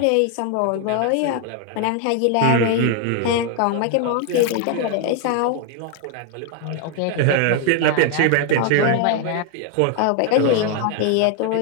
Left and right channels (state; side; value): different; both; correlation 0.00